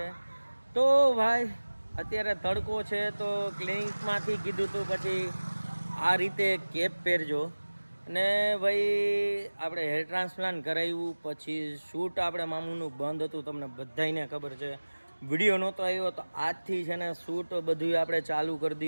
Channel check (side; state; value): both; inverted; correlation -1.00